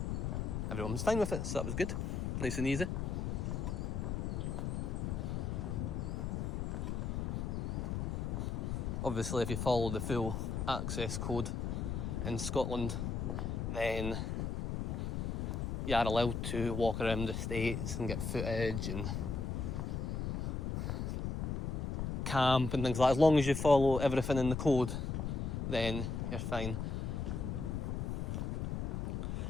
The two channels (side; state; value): left; noise; rumble, 1 dB below the sound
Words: everyone was fine with it, so that was good, nice and easy. Obviously if you follow the full access code in Scotland, then you are allowed to walk around the estates and get footage and camp and things like that. As long as you follow everything in the code, then you're fine.